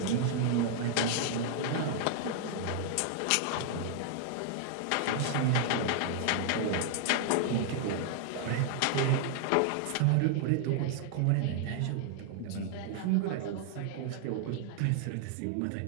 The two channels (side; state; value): both; different; correlation 0.00